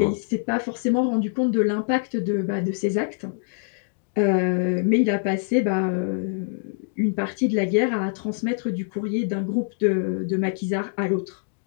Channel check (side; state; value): right; silent; digital silence